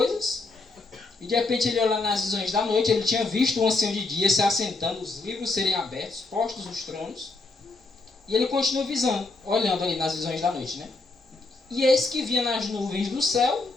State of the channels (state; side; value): quieter; right; 3.4 dB